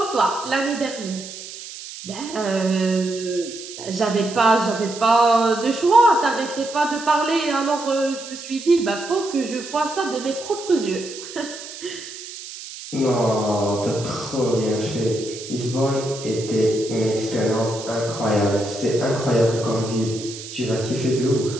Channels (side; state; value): right; noise; hiss, 12 dB below the sound